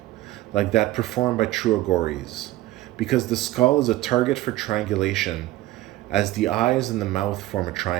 like that performed by true Agoris, because the skull is a target for triangulation, as the eyes and the mouth form a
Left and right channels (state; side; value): quieter; left; 15.9 dB